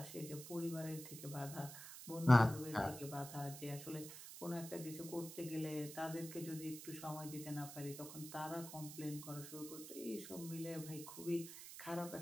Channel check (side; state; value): right; noise; hiss, 11 dB below the sound